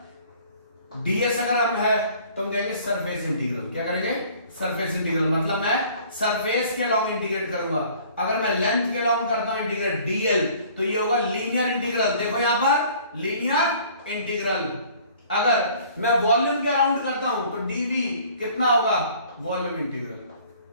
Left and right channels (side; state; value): both; inverted; correlation -0.53